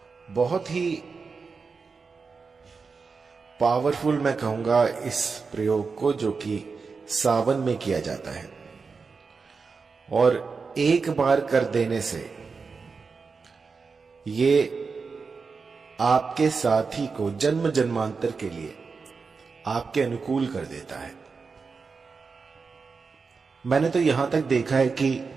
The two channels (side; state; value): left; quieter; 4.9 dB